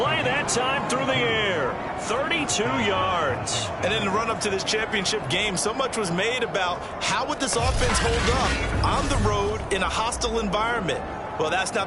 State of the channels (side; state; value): both; identical; correlation 1.00